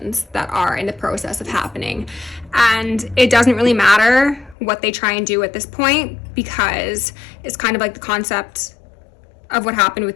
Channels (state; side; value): drops out; right; at 4.5 s